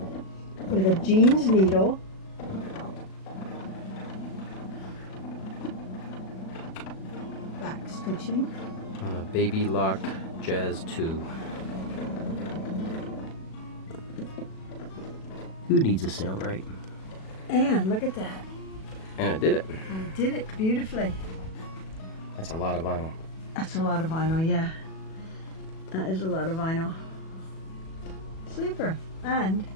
With a jeans needle. Back stitching. On a Baby Lock Jazz 2. Who needs a Sailrite? And look at that. And it did it. And it did it beautifully. That's a lot of vinyl. That's a lot of vinyl, yeah. That is a lot of vinyl. Super. And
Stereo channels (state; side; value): late; right; 37 ms